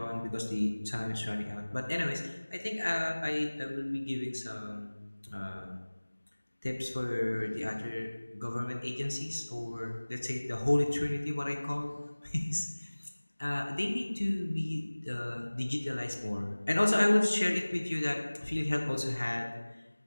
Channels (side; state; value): both; inverted; correlation -1.00